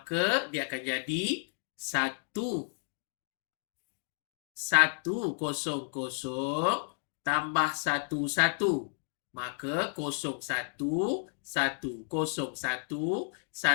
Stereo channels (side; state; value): right; silent; digital silence